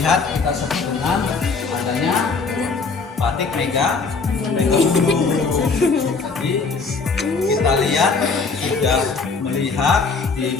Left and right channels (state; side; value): quieter; right; 4.5 dB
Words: kita sebut dengan adanya batik Mega Bulu. Jadi kita lihat sudah melihat di